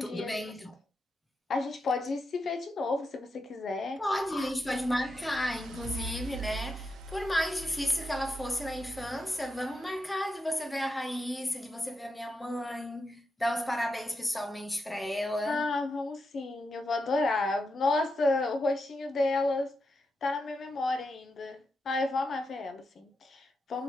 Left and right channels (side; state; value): both; normal; correlation 0.86